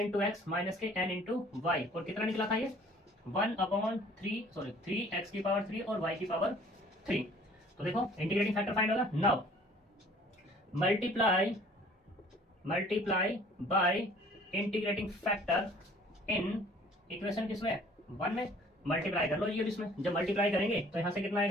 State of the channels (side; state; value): both; normal; correlation 0.53